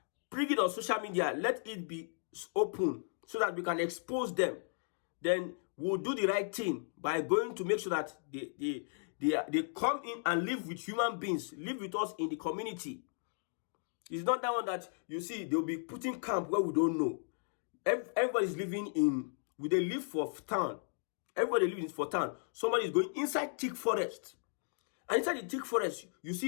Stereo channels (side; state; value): right; silent; digital silence